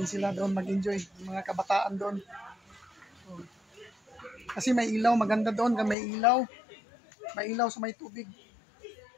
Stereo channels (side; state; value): right; drops out; at 6.0 s